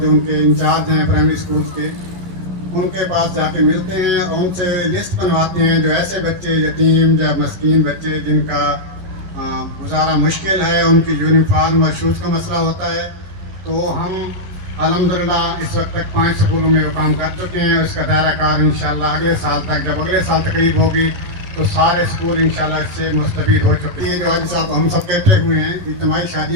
ان کے انچارج ہیں پرائمری اسکولس کے، ان کے پاس جا کے ملتے ہیں اور ان سے لسٹ بنواتے ہیں جو ایسے بچے یتیم یا مسکین بچے جن کا گزارا مشکل ہے، ان کی یونیفارم اور شوز کا مسئلہ ہوتا ہے. تو ہم الحمدللہ اس وقت تک 5 اسکولوں میں وہ کام کر چکے ہیں. اس کا دائرہ کار انشاءاللہ اگلے سال تک، جب اگلے سال تقریب ہوگی تو سارے اسکول انشاءاللہ اس سے مستفید ہو چکے ہیں. جو آج صاحب ہم سب کہتے ہوئے ہیں اجتماعی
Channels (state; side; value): late; left; 11 ms